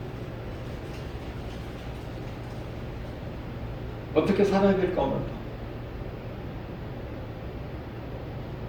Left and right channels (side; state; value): both; identical; correlation 1.00